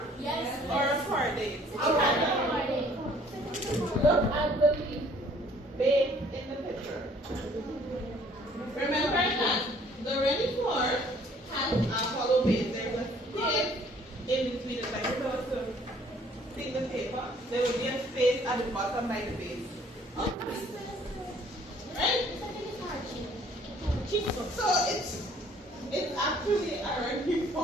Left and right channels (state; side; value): normal; both; correlation 0.58